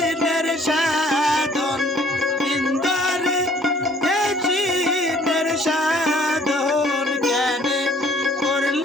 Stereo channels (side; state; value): both; normal; correlation 0.58